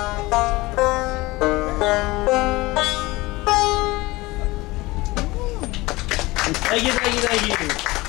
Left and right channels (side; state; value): right; quieter; 21.0 dB